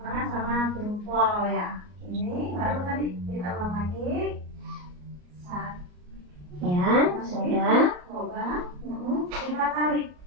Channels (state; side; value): late; left; 33 ms